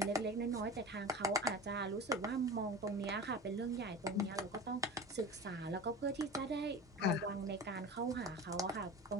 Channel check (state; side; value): normal; both; correlation 0.33